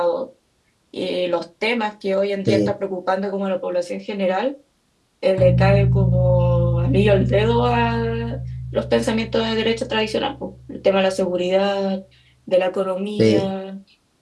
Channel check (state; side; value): identical; both; correlation 1.00